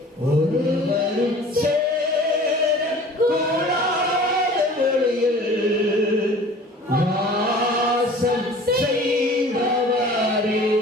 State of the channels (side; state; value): both; normal; correlation 0.45